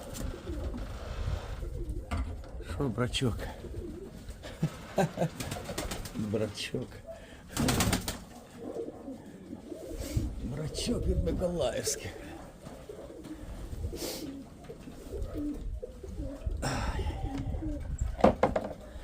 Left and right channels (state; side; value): identical; both; correlation 1.00